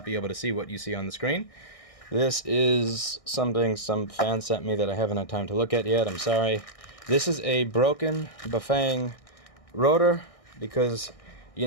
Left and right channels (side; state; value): right; late; 1.6 ms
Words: be able to see what you see on the screen. This is something some fan sent me that I haven't had time to look at yet. I'm sorry. This is a broken Pfsense Router because